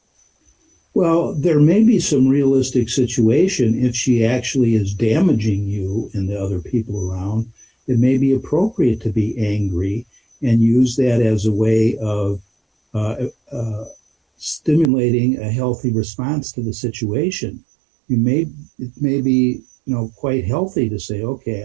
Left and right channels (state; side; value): drops out; left; at 14.9 s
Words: Well, there may be some realistic situation if she actually is damaging you and the other people around. It may be appropriate to be angry and use that as a way of stimulating a healthy response to the situation. It may be, quite healthy to say,